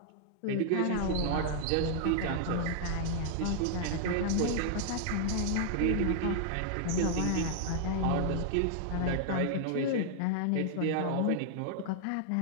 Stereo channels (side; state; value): both; different; correlation -0.01